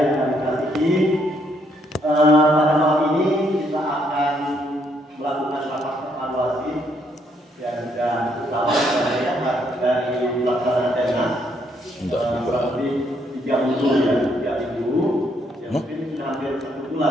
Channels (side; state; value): both; normal; correlation 0.72